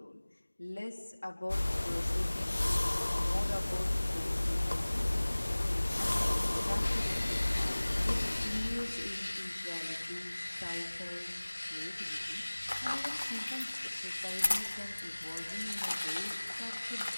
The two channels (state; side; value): inverted; both; correlation -1.00